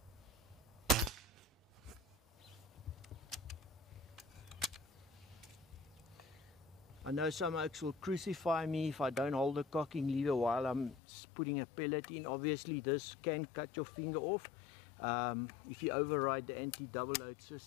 I know some oaks will crucify me if I don't hold the cocking lever while I'm putting a pellet in. Obviously this can cut your finger off if you override the anti-double load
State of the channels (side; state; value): right; drops out; at 11.0 s